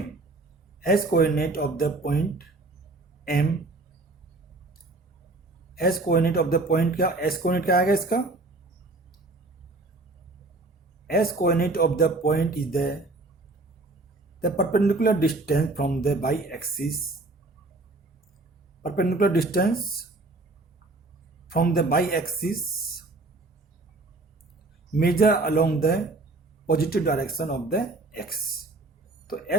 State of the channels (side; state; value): left; quieter; 3.1 dB